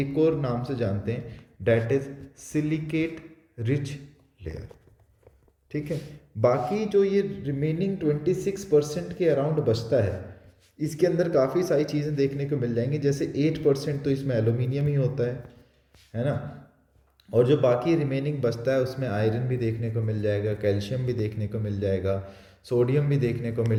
और नाम से जानते हैं, that is silicate rich layer. ठीक है, बाकी जो ये रिमेनिंग 26% के अराउंड बचता है, इसके अंदर काफ़ी सारी चीज़ें देखने को मिल जाएंगी। जैसे 8% तो इसमें एल्यूमिनियम ही होता है ना, और जो बाकी रिमेनिंग बचता है उसमें आयरन भी देखने को मिल जाएगा, कैल्शियम भी देखने को मिल जाएगा, सोडियम भी देखने को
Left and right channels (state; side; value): identical; both; correlation 1.00